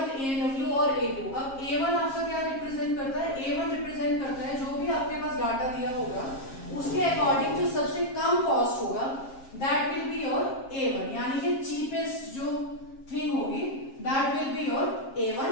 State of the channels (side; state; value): right; late; 7.4 ms